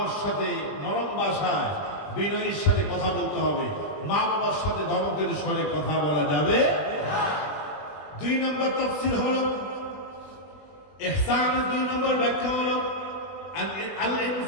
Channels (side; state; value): right; late; 20 ms